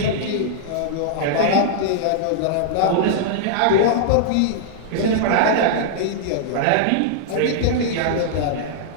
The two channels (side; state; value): both; different; correlation -0.02